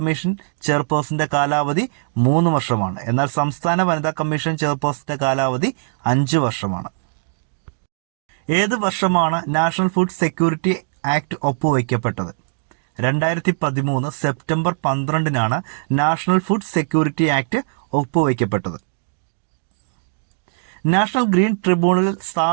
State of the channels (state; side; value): silent; left; 65 dB below the other